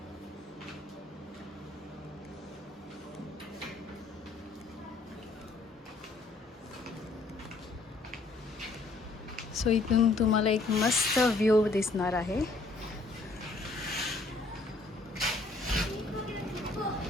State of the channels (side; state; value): right; quieter; 3.4 dB